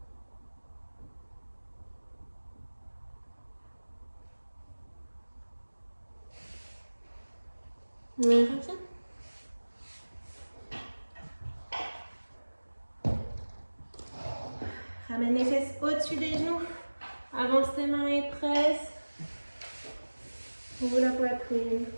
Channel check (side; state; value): both; inverted; correlation -1.00